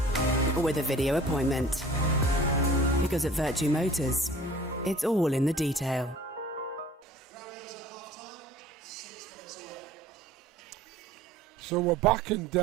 or with a video appointment. Because at Vertu Motors, it's all in the detail. So we're back, and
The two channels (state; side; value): normal; both; correlation 0.47